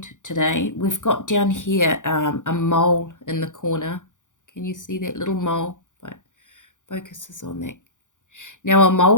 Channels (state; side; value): late; right; 0.87 ms